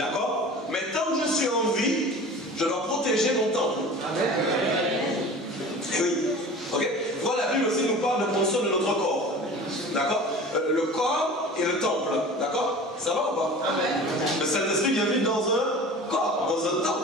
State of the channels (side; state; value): both; normal; correlation 0.39